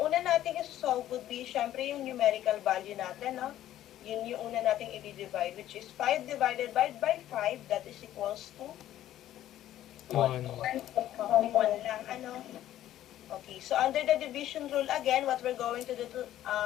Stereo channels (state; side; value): quieter; right; 12.8 dB